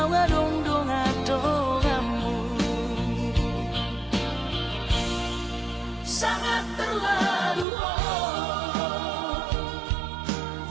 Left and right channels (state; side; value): drops out; left; at 7.7 s